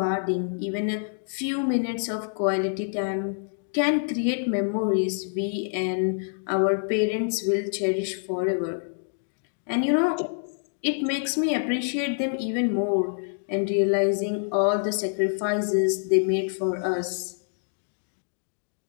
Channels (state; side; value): silent; right; digital silence